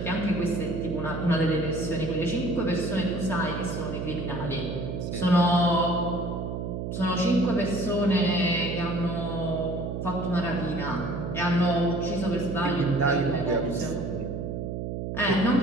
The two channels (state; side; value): noise; right; hum, 4 dB below the sound